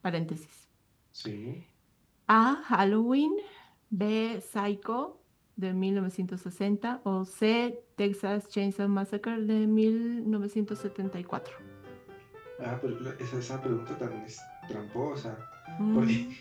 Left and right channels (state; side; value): identical; both; correlation 1.00